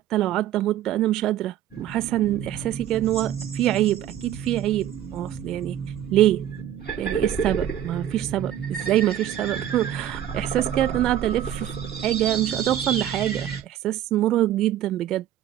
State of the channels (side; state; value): left; quieter; 11.5 dB